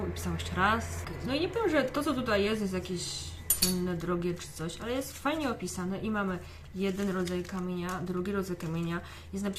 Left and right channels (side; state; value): both; identical; correlation 1.00